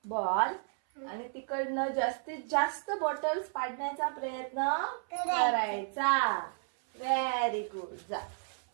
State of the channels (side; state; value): left; silent; 56 dB below the other